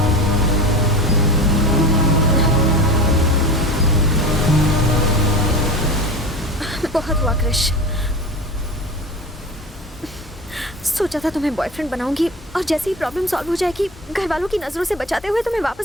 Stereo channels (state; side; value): normal; both; correlation 0.31